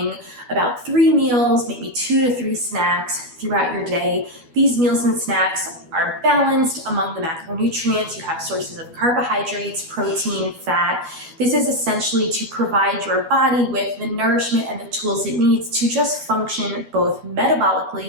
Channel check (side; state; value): left; late; 12 ms